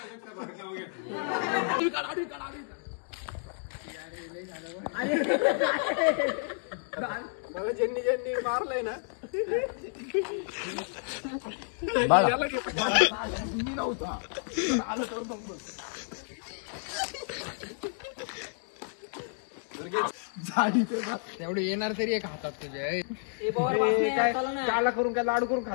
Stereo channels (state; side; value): silent; right; digital silence